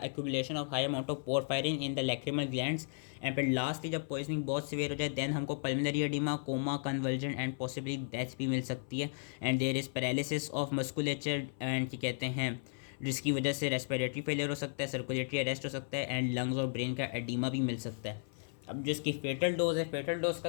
accumulation of high amount of porphyrin in the lacrimal glands. And फिर लास्टली जब पॉइजनिंग बहुत सिवियर हो जाए देन हमको pulmonary oedema, coma, convulsion and possibly death भी मिल सकती है। And there is paralysis of musculature and क्या कहते हैं, जिसकी वजह से रेस्पिरेटरी फेलियर हो सकता है, सर्कुलेटरी अरेस्ट हो सकता है एंड लंग्स और ब्रेन का एडिमा भी मिल सकता है। अब जो इसकी फेटल डोज है, फेटल डोज का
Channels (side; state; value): right; silent; 55 dB below the other